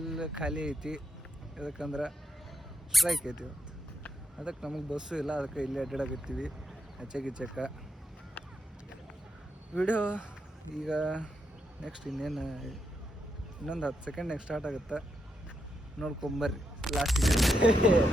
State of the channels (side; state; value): both; normal; correlation 0.81